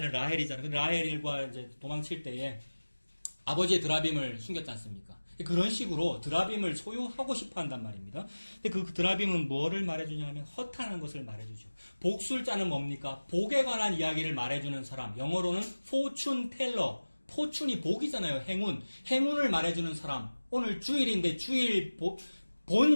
라헬이잖아요. 근데 라헬과 이제 도망칠 때에 아버지의 드라빔을 숨겼지 않습니까? 그런 식으로 드라빔을 소유하고 싶어 한단 말입니다. 근데 그 드라빔은 뭐를 말해주냐면 허탄한 것을 말해주죠. 복술자는 뭡니까? 복에 관한 이야기를 말해주는 사람. 영어로는 fortune teller. 포춘이 복이잖아요. 행운. 행운을 말해주는 사람. 오늘 주일인데 주일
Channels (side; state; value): both; inverted; correlation -1.00